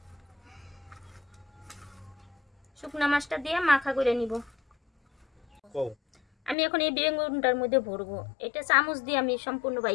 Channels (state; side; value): drops out; right; at 6.6 s